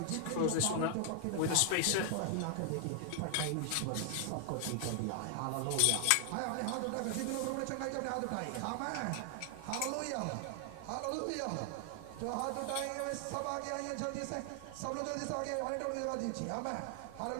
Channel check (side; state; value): both; different; correlation 0.00